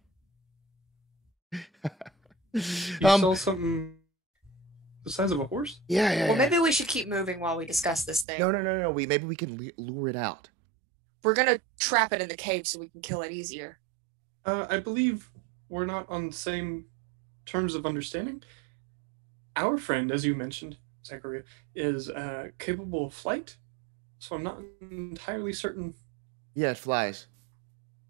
You saw something the size of a horse? Yeah. Well, maybe we should keep moving while we discuss this thing. No. Maybe we can lure it out. We're gonna trap it in the cave so we can kill it easier. I believe we're not on the same terms of understanding. Our friend, as you mentioned, Zachariah, is capable of flight, so I'm not entirely certain. Yeah, it flies.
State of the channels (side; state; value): left; drops out; at 8.2 s